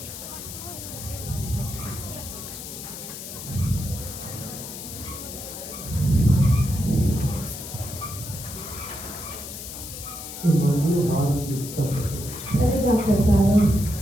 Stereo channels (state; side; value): noise; left; hiss, 10 dB below the sound